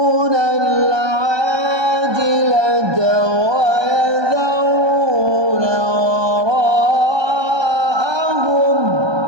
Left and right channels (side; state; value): left; late; 1.2 ms